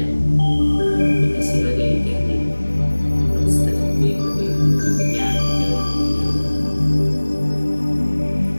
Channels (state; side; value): inverted; both; correlation -1.00